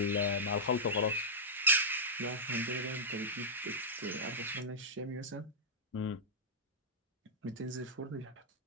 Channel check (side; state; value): both; normal; correlation -0.10